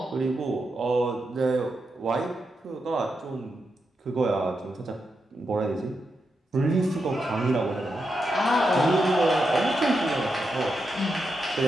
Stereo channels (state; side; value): normal; both; correlation 0.86